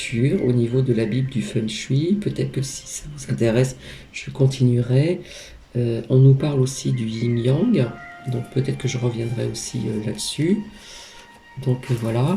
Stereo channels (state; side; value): identical; both; correlation 1.00